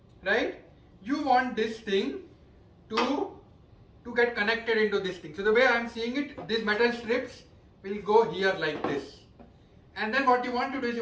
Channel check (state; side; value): identical; both; correlation 1.00